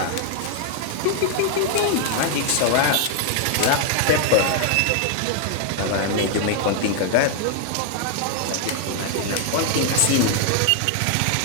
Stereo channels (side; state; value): both; different; correlation 0.00